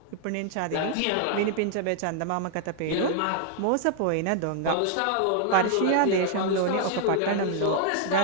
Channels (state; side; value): different; both; correlation 0.00